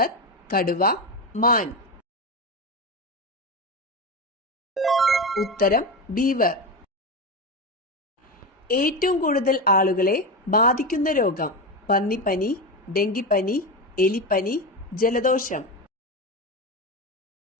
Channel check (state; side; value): normal; both; correlation 0.17